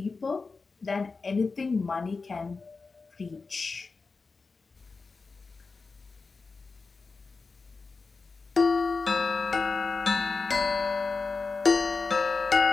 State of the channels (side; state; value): right; quieter; 4.2 dB